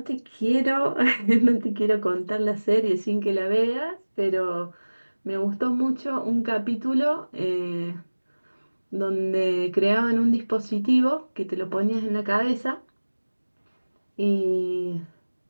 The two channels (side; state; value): both; inverted; correlation -1.00